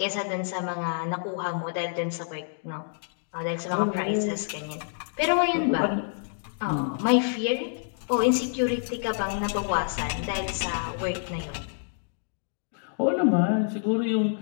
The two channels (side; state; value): right; silent; digital silence